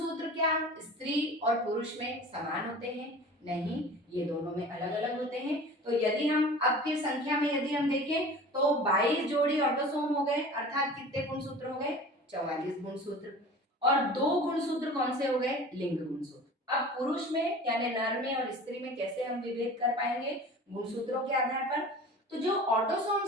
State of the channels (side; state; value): both; normal; correlation 0.40